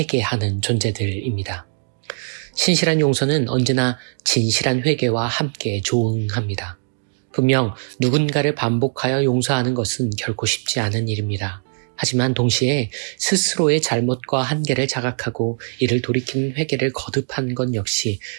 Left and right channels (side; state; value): left; silent; digital silence